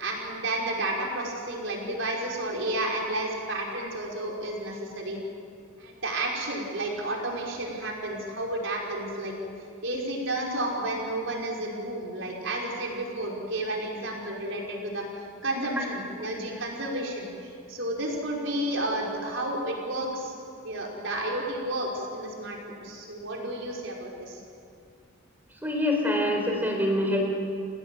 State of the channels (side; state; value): both; normal; correlation 0.06